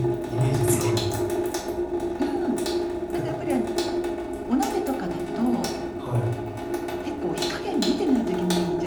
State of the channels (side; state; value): both; identical; correlation 1.00